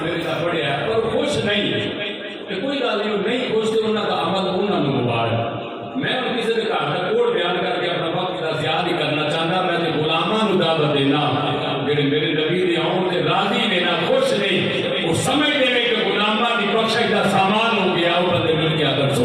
میرے ساتھ پڑھیا ہے پر خوش نہیں کہ کوئی گل نہیں خوش تے انہوں کا عمل انہوں نے مبارک میں ان کسی کے گھر کا کوڑ بیان کر کے اپنا وقت کا ضیاع نہیں کرنا چاہتا میں تے غلاماں نوں دعوت دینا جڑے میرے نبی دے آؤں تے راضی لینا خوش نہیں وہ سمجھتے ہیں کہ غلاماں کی بخشش کا سامان ہو گیا وہ بندے مل کے اگر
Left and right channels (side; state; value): both; identical; correlation 1.00